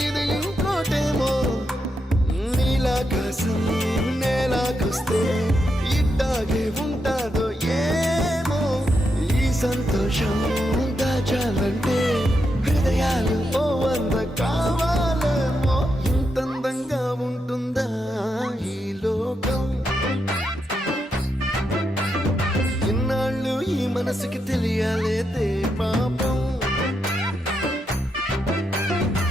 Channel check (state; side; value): normal; both; correlation 0.83